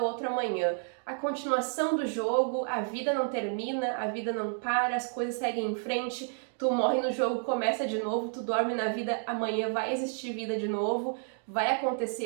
outro amanhã. A continuação do jogo, a vida não termina, a vida não para, as coisas seguem em frente, tu morre no jogo, começa de novo, tu dorme na vida, amanhã vai existir vida de novo, vai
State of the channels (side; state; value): left; silent; 57 dB below the other